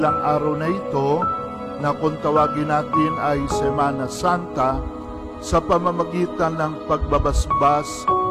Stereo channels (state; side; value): identical; both; correlation 1.00